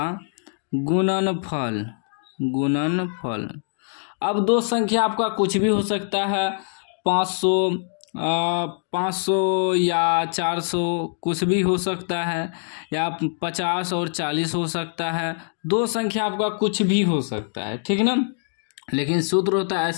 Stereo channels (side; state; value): right; silent; digital silence